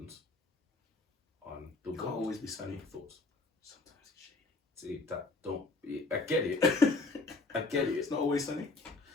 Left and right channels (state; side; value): quieter; right; 3.4 dB